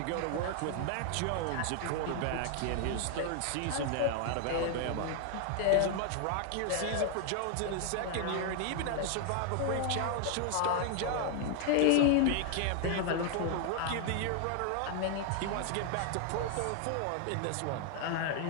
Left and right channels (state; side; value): different; both; correlation 0.00